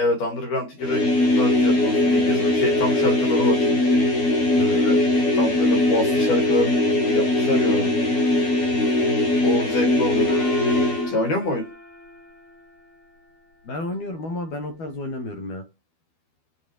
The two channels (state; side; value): late; right; 12 ms